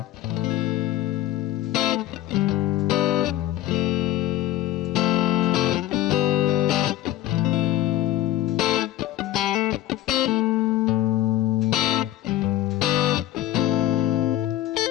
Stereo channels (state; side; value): quieter; right; 14.0 dB